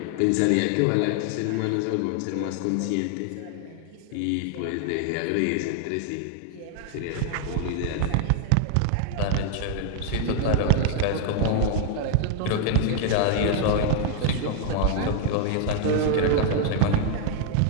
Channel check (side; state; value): both; different; correlation 0.00